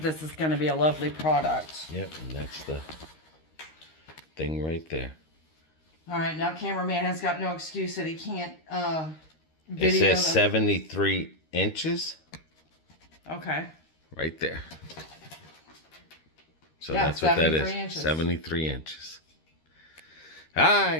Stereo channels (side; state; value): right; late; 13 ms